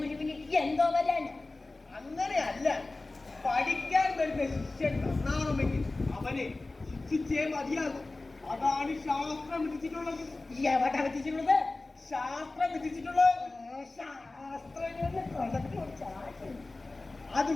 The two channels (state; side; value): quieter; right; 3.2 dB